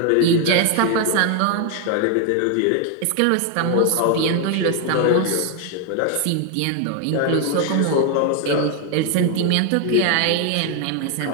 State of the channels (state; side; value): different; both; correlation 0.00